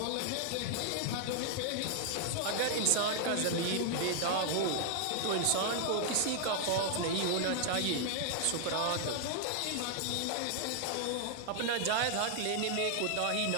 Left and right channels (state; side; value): different; both; correlation 0.00